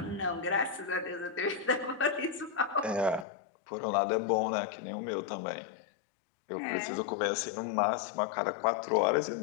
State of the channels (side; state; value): right; drops out; at 3.2 s